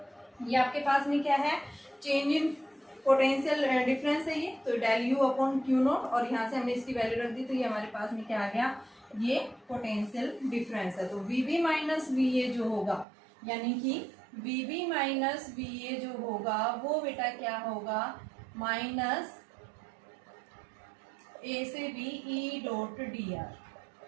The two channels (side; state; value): left; drops out; at 13.1 s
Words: ये आपके पास में क्या है, चेंज इन पोटेंशियल डिफरेंस है ये, तो del U upon Q naught, और यहाँ से हमने इसकी वैल्यू रख दी, तो ये हमारे पास में क्या आ गया, ये पोटेंशियल डिफरेंस है। तो V B minus V A जो होगा, यानी कि V B minus V A जो होगा वो बेटा क्या होगा, माइनस ए से B E dot D R,